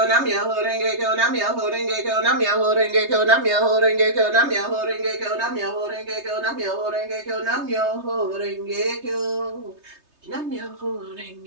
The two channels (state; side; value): late; left; 3.3 ms